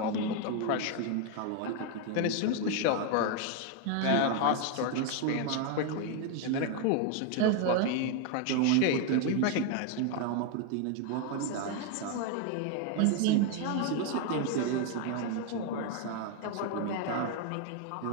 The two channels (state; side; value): different; both; correlation 0.01